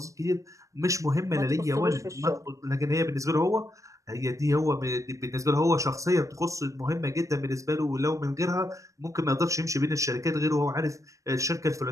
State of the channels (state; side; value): late; left; 0.15 ms